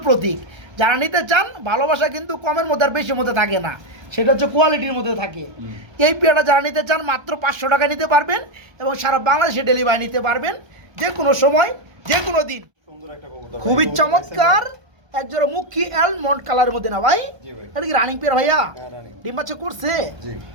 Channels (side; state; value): left; late; 1.3 ms